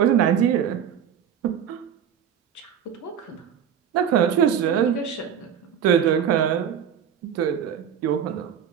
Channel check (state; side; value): quieter; left; 8.5 dB